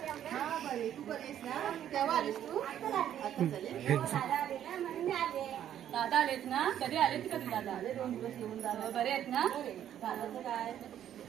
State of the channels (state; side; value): quieter; left; 10.6 dB